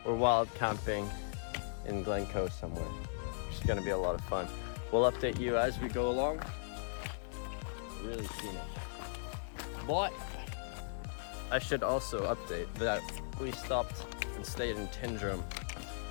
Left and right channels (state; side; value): silent; right; 53 dB below the other